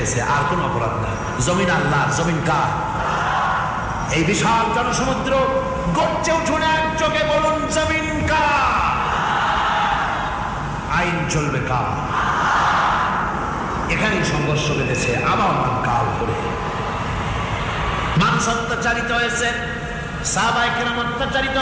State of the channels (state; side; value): identical; both; correlation 1.00